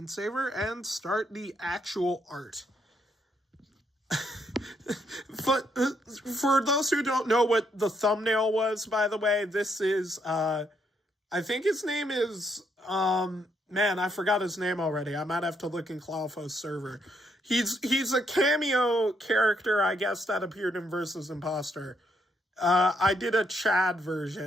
and start the actual art. For those who don't know what the thumbnail was, by the way, this is, I think his name is, man, I forgot his name already. I might have to look in Clawfo's server. He's a cameo character, I guess, that appeared in Versus Imposter. I did a Chad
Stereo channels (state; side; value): normal; both; correlation 0.75